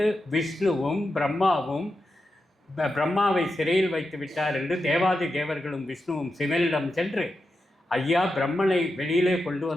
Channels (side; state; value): both; normal; correlation 0.88